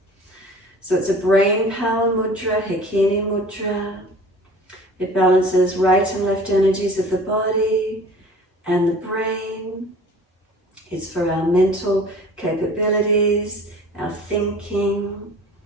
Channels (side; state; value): both; normal; correlation 0.45